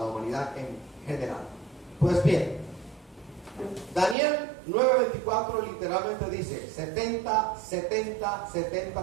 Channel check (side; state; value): left; drops out; at 4.2 s